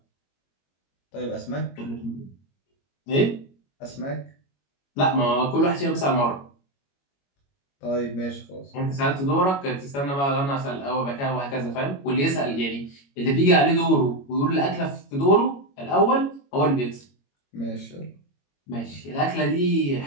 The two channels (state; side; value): late; right; 22 ms